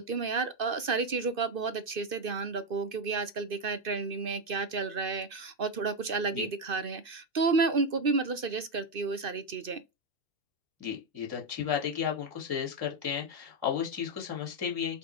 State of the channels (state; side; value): late; left; 2.6 ms